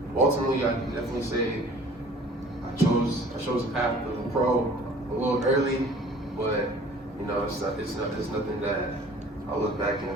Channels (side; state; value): both; normal; correlation 0.49